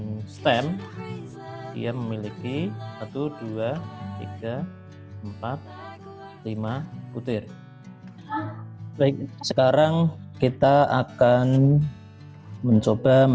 STEM dia memiliki 1, 2, 3, 4, 5 butir. Baik, sekarang kita akan mencoba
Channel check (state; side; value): identical; both; correlation 1.00